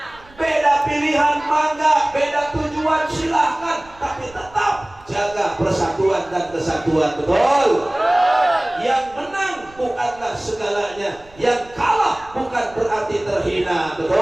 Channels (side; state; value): right; noise; rumble, 25 dB below the sound